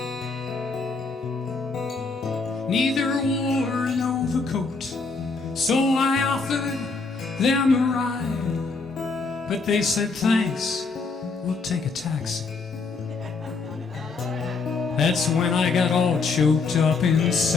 Neither wore an overcoat, so I offered them a ride, but they said thanks, we'll take a taxi. That's when I got all choked up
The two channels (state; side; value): quieter; right; 4.3 dB